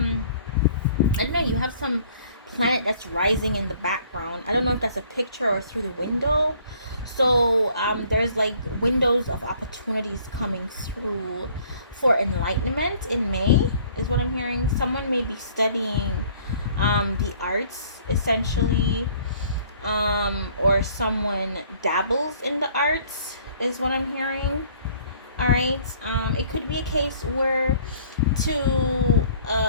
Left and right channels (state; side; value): inverted; both; correlation -0.57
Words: don't know, you have some planet that's rising in the background. I don't know if that's a picture or through the window. So there's like windows of opportunities coming through for enlightenment in May, is what I'm hearing. Someone may be studying the arts, essentially, or someone dabbles in the arts, is what I'm hearing. All right. It could be a case where to